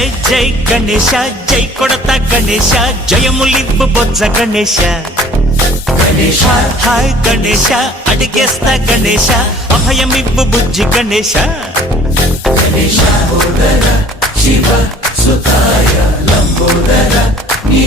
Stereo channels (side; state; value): both; normal; correlation 0.51